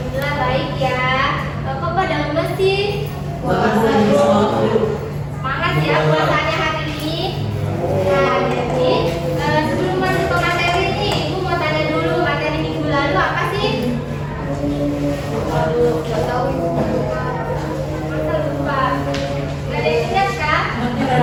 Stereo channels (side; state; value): both; identical; correlation 1.00